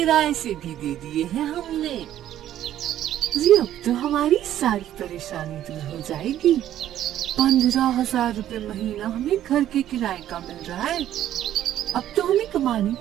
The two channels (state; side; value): quieter; left; 11.9 dB